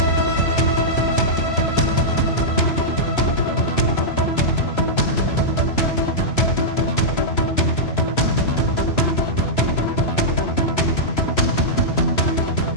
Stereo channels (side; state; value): right; late; 3.0 ms